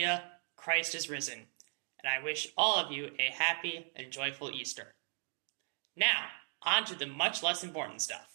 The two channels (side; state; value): left; silent; 53 dB below the other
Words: Christ is risen, and I wish all of you a happy and joyful Easter. Now, on to the much less important